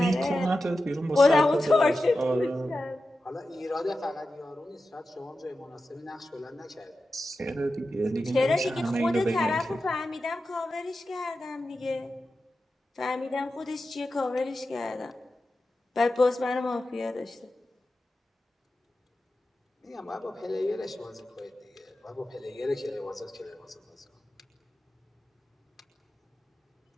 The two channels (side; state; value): both; normal; correlation 0.92